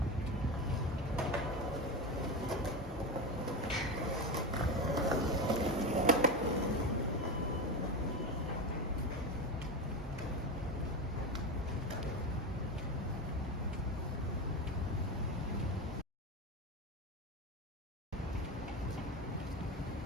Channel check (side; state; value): both; normal; correlation 0.19